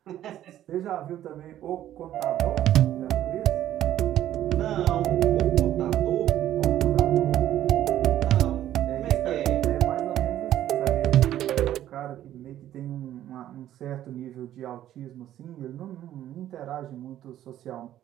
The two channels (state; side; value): quieter; left; 12.3 dB